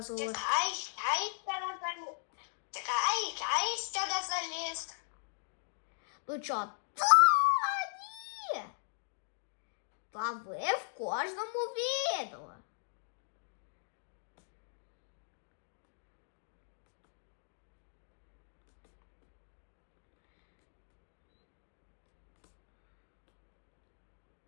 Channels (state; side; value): silent; right; digital silence